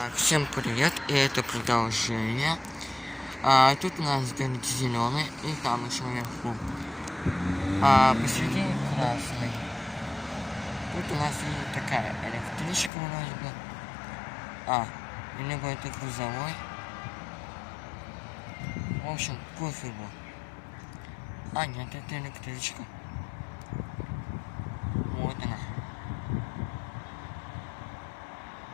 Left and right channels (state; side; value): drops out; right; at 12.9 s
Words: Всем привет, и это продолжение. Тут у нас горит зеленый, и там еще наверху. Посередине красный. Тут у нас и такая электричка вроде бы. Либо это грузовой. В общем, пофигу. Нет, это электричка. Вот она.